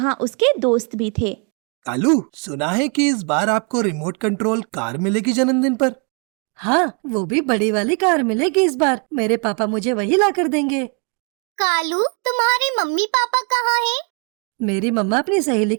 उसके दोस्त भी थे। कालू, सुना है कि इस बार आपको रिमोट कंट्रोल कार मिलेगी जन्मदिन पर। हाँ, वो भी बड़ी वाली कार मिलेगी इस बार। मेरे पापा मुझे वही ला कर देंगे। कालू, तुम्हारे मम्मी पापा कहाँ हैं? मेरी मम्मा अपनी सहेली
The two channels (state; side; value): quieter; left; 36.6 dB